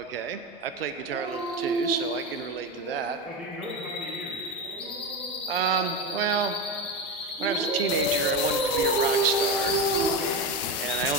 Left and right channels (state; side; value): normal; both; correlation 0.18